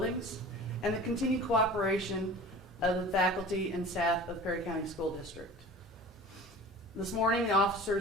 and the continued cooperation of the faculty and staff of Perry County School District. This morning, the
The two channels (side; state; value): both; normal; correlation 0.40